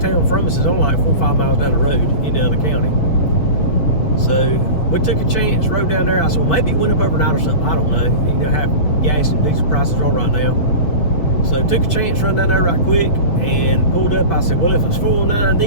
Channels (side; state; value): right; late; 7.0 ms